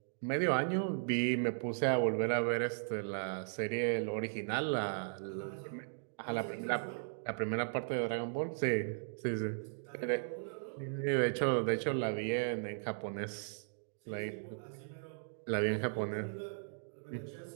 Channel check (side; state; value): left; silent; digital silence